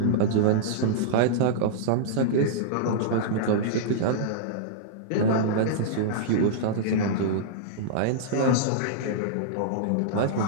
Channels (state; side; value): different; both; correlation -0.02